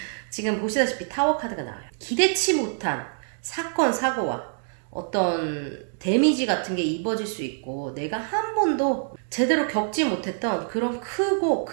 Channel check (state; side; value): silent; left; digital silence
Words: 지금 보시다시피 타워 카드가 나와요. 기대치 못한 사건 사고와 어떤 데미지 같은 게 입어질 수 있고 내가 한 번도 제대로 겪지 못했던 그런 크고